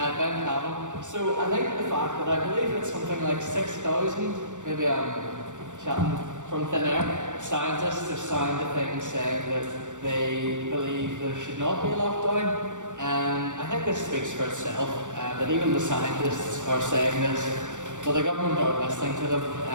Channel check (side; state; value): left; late; 0.85 ms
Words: Cavan. So I think the fact that I believe it's something like 6,000, maybe I'm chatting from thin air, scientists have signed a thing saying that they believe there should not be a lockdown. I think this speaks for itself, that even the scientists are saying this. But the government aren't listening to them.